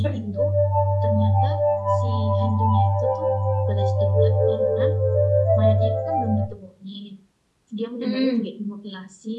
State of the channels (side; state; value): both; identical; correlation 1.00